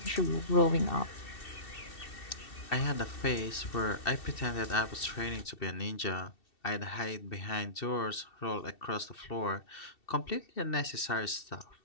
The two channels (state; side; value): late; right; 2.7 ms